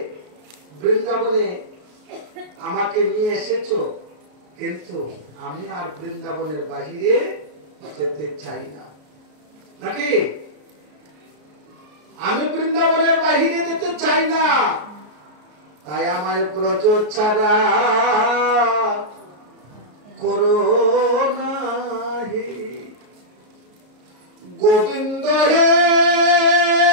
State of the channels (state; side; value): late; left; 33 ms